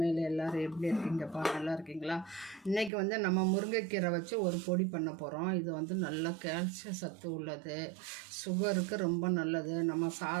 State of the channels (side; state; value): left; drops out; at 2.9 s